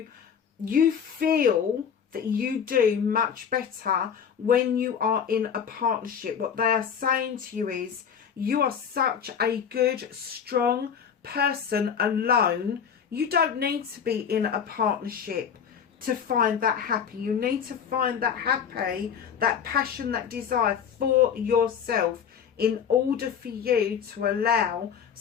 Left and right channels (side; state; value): right; quieter; 7.5 dB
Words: feel that you do much better when you are in a partnership. What they are saying to you is, you are such a good, strong person alone. You don't need to be in a partnership to find that happy. You need to find that happy, that passion, that desire for yourself in order for you to allow